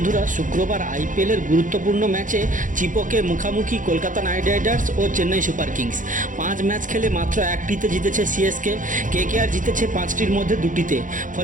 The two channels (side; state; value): left; late; 0.38 ms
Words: শুক্রবার আইপিএলের গুরুত্বপূর্ণ ম্যাচে চিপকে মুখামুখি কলকাতা নাইট রাইডার্স ও চেন্নাই সুপার কিংস। 5 ম্যাচ খেলে মাত্র একটিতে জিতেছে সিএসকে। কেকেআর জিতেছে 5টির মধ্যে 2টিতে।